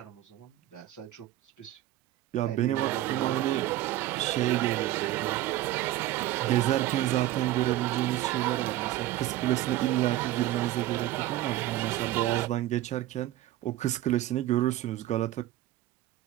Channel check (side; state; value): left; quieter; 14.9 dB